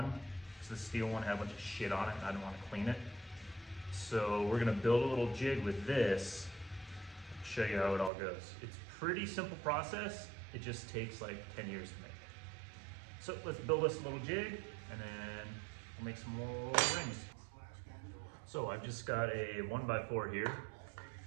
because the steel one had a bunch of shit on it and I didn't want to clean it. So we're gonna build a little jig with this, show you how it all goes. It's a pretty simple process. It just takes like 10 years to make. So let's build us a little jig and then we'll make some more rings. So I've just got a 1x4 here.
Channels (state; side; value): drops out; left; at 8.1 s